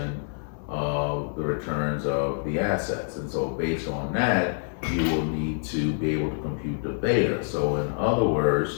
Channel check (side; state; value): right; silent; digital silence